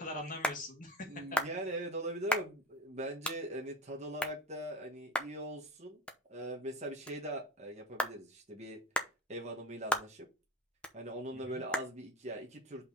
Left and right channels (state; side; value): normal; both; correlation 0.33